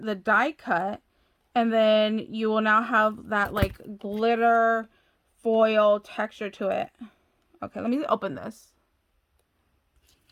the die cut, and then you will now have that like glitter foil texture to it. Okay, let me open this.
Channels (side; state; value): both; identical; correlation 1.00